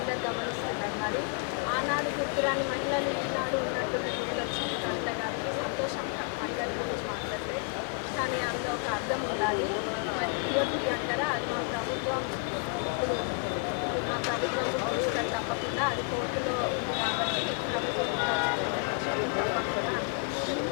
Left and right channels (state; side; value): quieter; right; 35.5 dB